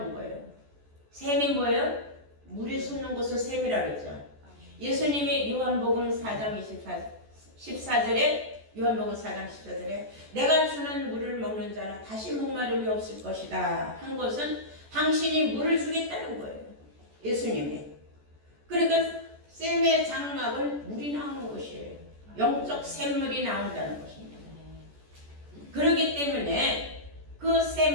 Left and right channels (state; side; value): late; left; 14 ms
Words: 거예요. 셈이 뭐예요? 물이 솟는 곳을 셈이라 그랬죠. 예수님이 요한복음 4장 14절에 요한복음 4장 14절에 내가 주는 물을 먹는 자는 다시 목마름이 없을 것이다 한 것은 당신이 물을 주겠다는 거예요. 예수님이. 그러니까 셈의 장막은 물이 나오는 곳이에요. 영적 샘물이 나온다는 것입니다. 그렇기 때문에 그